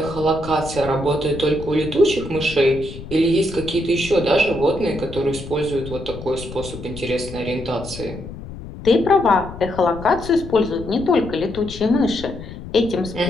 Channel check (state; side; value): noise; left; rumble, 12 dB below the sound